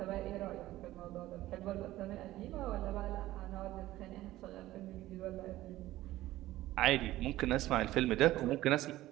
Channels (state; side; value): quieter; left; 15.8 dB